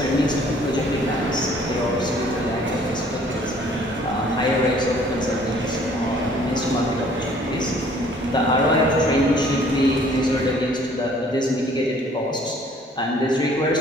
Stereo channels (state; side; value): normal; both; correlation 0.57